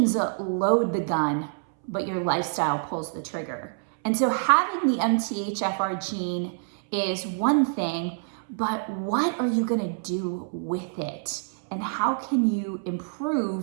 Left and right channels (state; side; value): silent; left; 60 dB below the other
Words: load the gun, but your lifestyle pulls the trigger. And so having the MTHFR gene is one thing, but what are you gonna do with it? And how can you